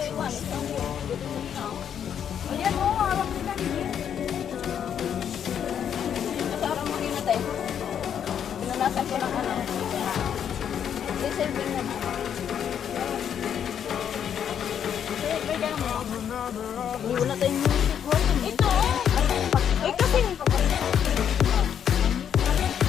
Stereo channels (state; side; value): quieter; right; 8.7 dB